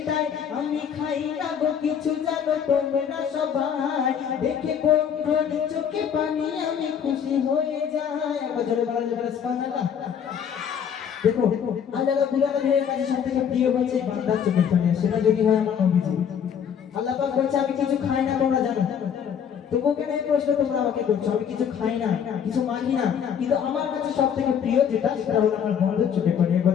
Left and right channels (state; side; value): quieter; right; 8.0 dB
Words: আমি খাই না গো কিছু জানো তোমরা সবাই দেখে বন্ধুর চোখে পানি আমি খুশি হয়ে যাই। আবার জোরে বলা যাবে সুবহানাল্লাহ। দেখো আল্লাহ রাব্বুল আলামিনের কাছে সবথেকে প্রিয় হচ্ছে বান্দার চোখের পানি, সেটা যদি হয় আমার নবীজি। আল্লাহ পাক বলছে আমি কিছু খাই না তোমরা জানো, তবুও কেন এই প্রশ্ন তোমরা আমাকে করছো? আমি কিছু খাই না কিছু মানি না, কিন্তু আমার কাছে সবথেকে প্রিয় যেটা সেটা হলো আমার বন্ধুর চোখে পানি। আবার